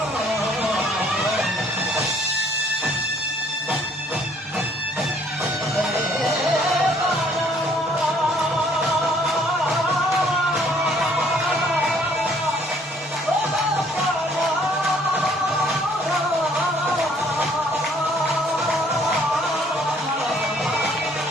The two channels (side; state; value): both; normal; correlation 0.61